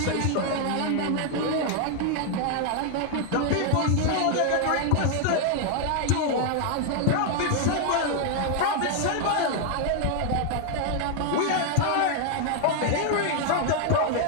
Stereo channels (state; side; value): different; both; correlation 0.00